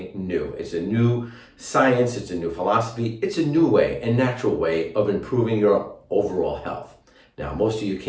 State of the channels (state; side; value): identical; both; correlation 1.00